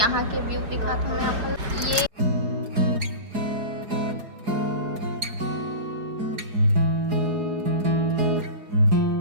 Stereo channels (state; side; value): late; left; 4.8 ms